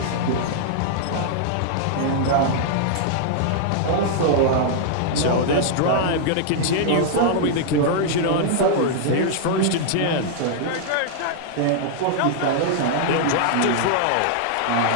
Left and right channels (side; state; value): both; different; correlation -0.01